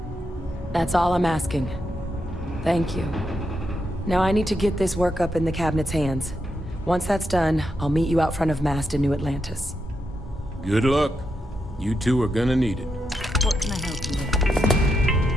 That's all I'm asking. Thank you. Now I need to get this work up in the cabinet's hands. Once that's done, I'll meet you out front of Mast in New Atlantis. Good luck. You two are gonna need it. What can I help you with?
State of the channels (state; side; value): normal; both; correlation 0.84